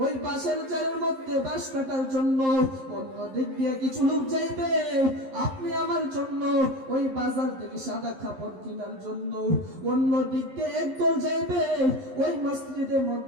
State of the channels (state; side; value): late; left; 11 ms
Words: ওই বাঁশের চালের মধ্যে বাঁশ কাটার জন্য, অন্য দিক দিয়ে কিছু লোক যাইবে আপনি আমার জন্য ওই বাজার থেকে সাদা কাপড় কেনার জন্য, অন্য দিক দিয়ে একদল যাইবে ওই মসজিদের